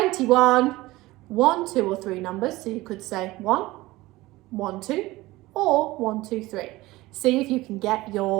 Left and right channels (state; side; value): quieter; left; 19.2 dB